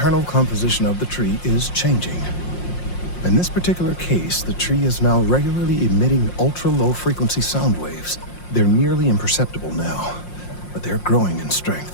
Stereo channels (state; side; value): late; right; 5.6 ms